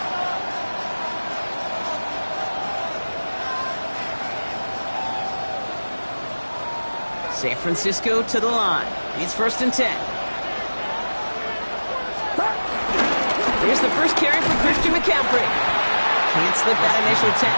San Francisco to the line. It's 1st and 10. Here's the first carry for Christian McCaffrey. Can't slip that initial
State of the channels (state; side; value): inverted; both; correlation -1.00